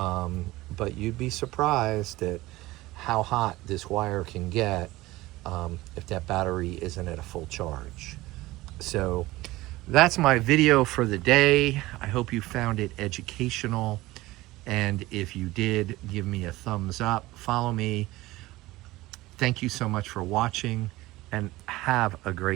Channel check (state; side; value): quieter; left; 18.6 dB